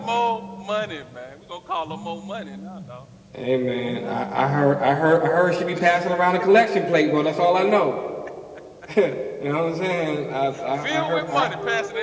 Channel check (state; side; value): identical; both; correlation 1.00